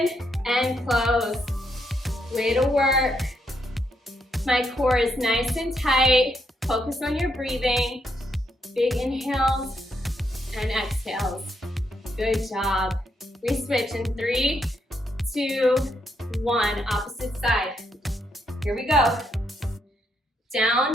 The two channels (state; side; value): normal; both; correlation 0.77